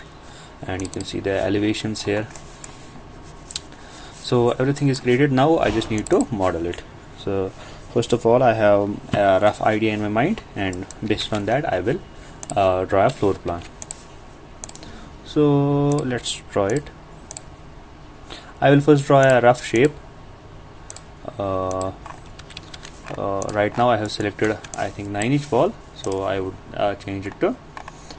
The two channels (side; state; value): both; identical; correlation 1.00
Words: and you can see the elevations here. So everything is created. Now I just need to model it. So first of all, I have a rough idea in my mind, and based on that I will draw a floor plan. So let's draw it. I will first draw a rough shape. Right now I have selected, I think, 9-inch wall, so I would change it to